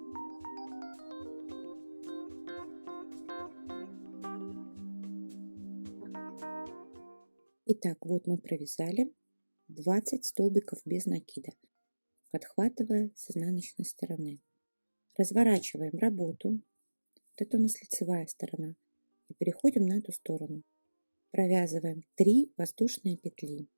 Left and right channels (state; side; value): inverted; both; correlation -1.00